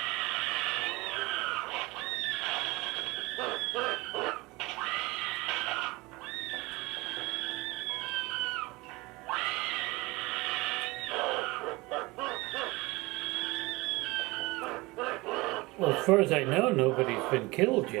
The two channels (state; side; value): quieter; left; 22.6 dB